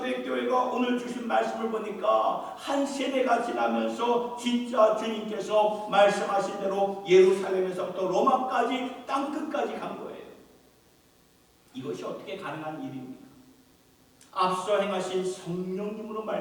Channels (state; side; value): identical; both; correlation 1.00